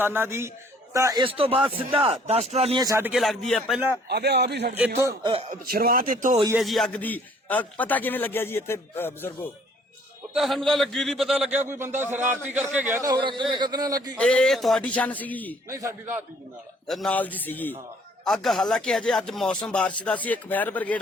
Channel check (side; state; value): both; normal; correlation 0.59